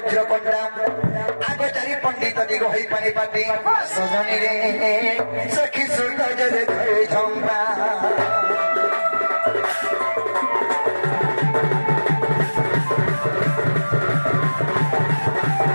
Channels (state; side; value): inverted; both; correlation -1.00